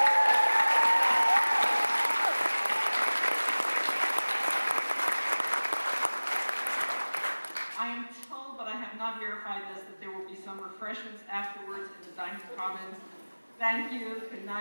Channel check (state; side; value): inverted; both; correlation -1.00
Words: I am told, but I have not verified this, that there will be some refreshments afterwards in the dining commons. Thank you. Good